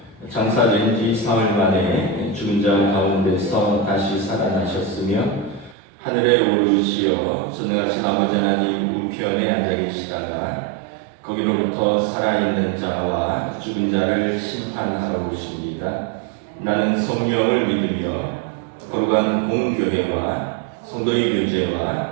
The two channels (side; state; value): left; drops out; at 5.8 s